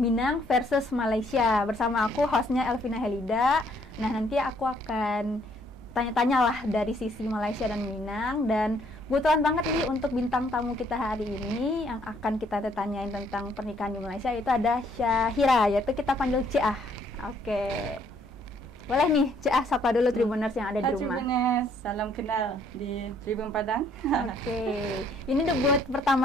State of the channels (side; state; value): both; normal; correlation 0.66